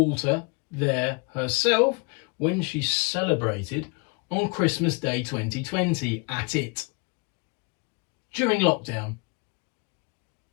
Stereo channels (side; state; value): right; quieter; 31.1 dB